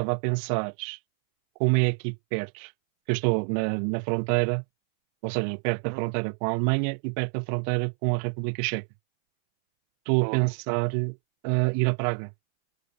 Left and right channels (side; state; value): left; silent; 60 dB below the other